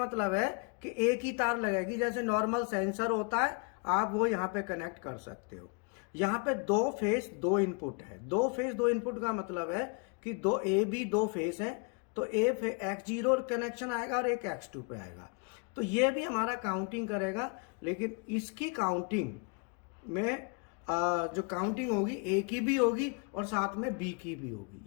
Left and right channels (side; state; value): right; quieter; 34.3 dB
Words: है कि एक ही तार लगेगी, जैसे नॉर्मल सेंसर होता है, आप वो यहाँ पे कनेक्ट कर सकते हो। यहाँ पे 2 फेस 2 इनपुट है। 2 फेस 2 इनपुट का मतलब है कि दो ए बी 2 फेस है, तो X0 कनेक्शन आएगा और एक X2 पे आएगा। तो ये भी हमारा काउंटिंग करेगा, लेकिन इसकी काउंटिंग में जो काउंटिंग होगी ए की भी होगी और साथ में बी की भी